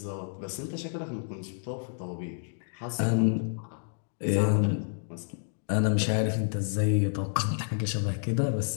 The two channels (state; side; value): silent; right; digital silence